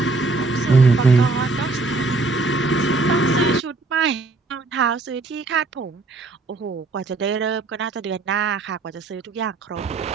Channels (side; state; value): left; quieter; 3.6 dB